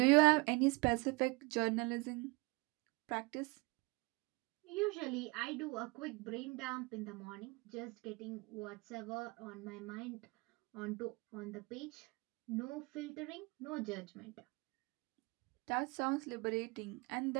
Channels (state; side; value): quieter; left; 26.7 dB